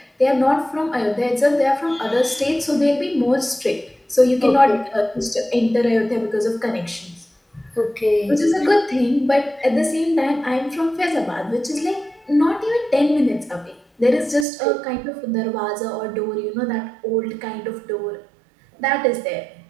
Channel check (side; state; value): left; drops out; at 14.5 s